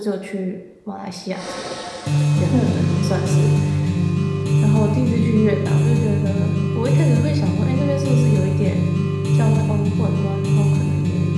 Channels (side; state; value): both; identical; correlation 1.00